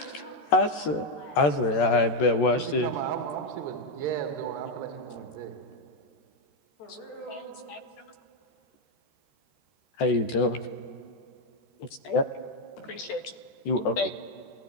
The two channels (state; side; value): late; right; 14 ms